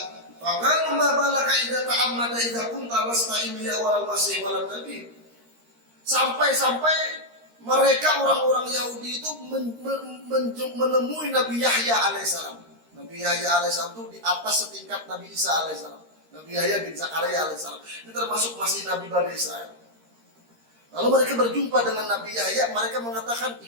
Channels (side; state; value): left; late; 13 ms